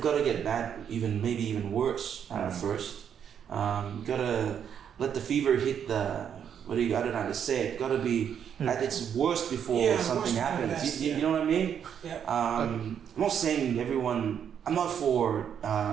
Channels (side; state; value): left; quieter; 8.4 dB